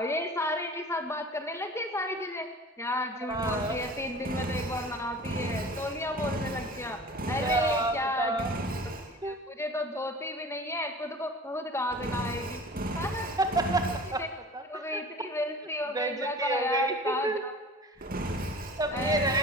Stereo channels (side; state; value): both; normal; correlation 0.41